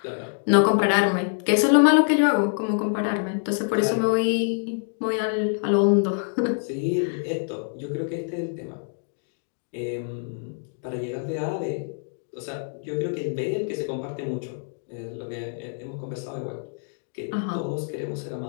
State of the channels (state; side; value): silent; right; digital silence